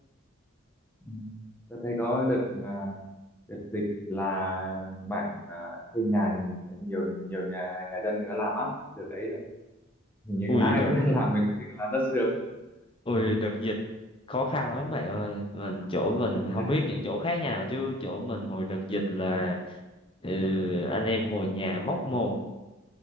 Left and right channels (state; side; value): normal; both; correlation 0.54